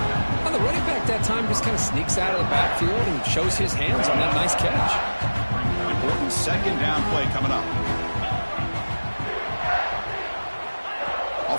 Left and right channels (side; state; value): both; inverted; correlation -1.00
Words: Well, the running back that time just kind of sneaks out of the backfield and shows his hands on that nice catch. Important second down play coming up.